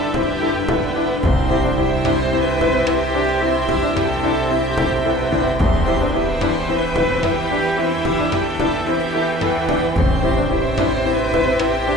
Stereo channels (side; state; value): both; normal; correlation 0.51